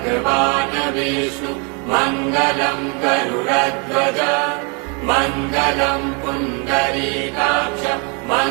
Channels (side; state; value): left; quieter; 34.7 dB